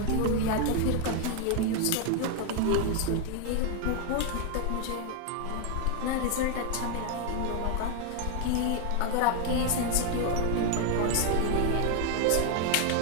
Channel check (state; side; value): different; both; correlation 0.01